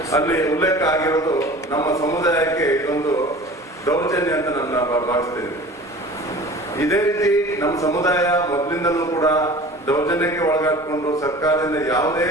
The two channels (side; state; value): both; normal; correlation 0.41